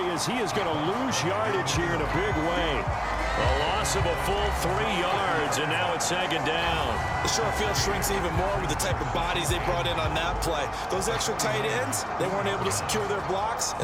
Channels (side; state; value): both; identical; correlation 1.00